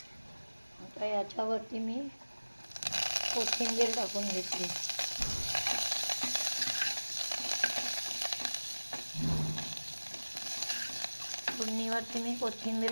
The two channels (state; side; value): inverted; both; correlation -1.00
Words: आता याच्यावरती मी कोथिंबीर टाकून घेतली. फोडणीवरती मी